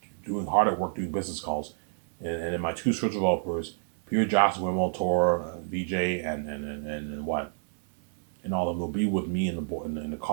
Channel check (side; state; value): left; silent; 59 dB below the other